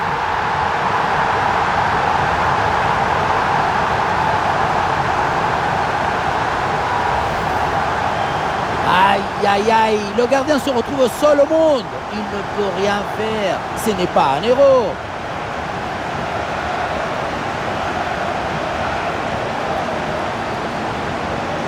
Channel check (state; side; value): identical; both; correlation 1.00